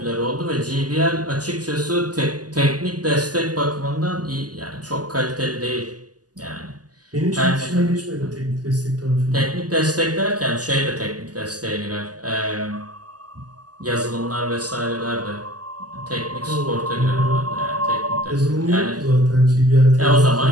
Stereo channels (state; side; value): late; left; 0.68 ms